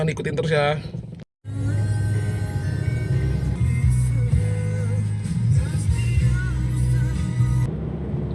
ikutin terus ya.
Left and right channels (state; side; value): identical; both; correlation 1.00